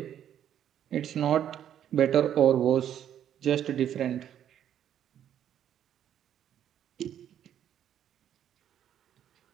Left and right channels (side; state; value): left; quieter; 10.2 dB